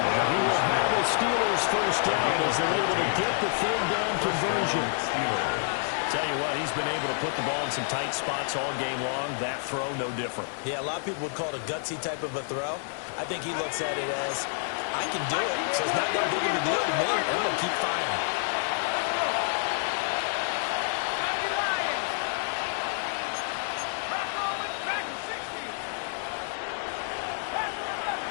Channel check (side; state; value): right; silent; 56 dB below the other